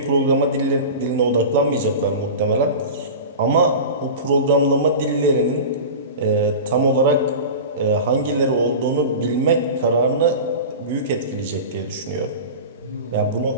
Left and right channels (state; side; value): inverted; both; correlation -0.31